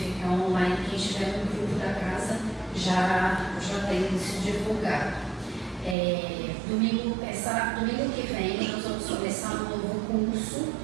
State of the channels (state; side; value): drops out; left; at 6.0 s